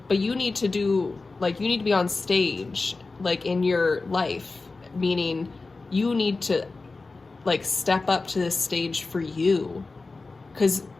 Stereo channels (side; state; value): right; quieter; 3.7 dB